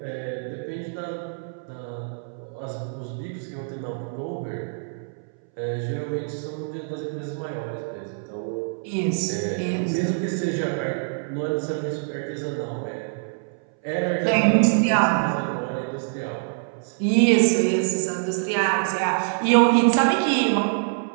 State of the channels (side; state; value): left; silent; 62 dB below the other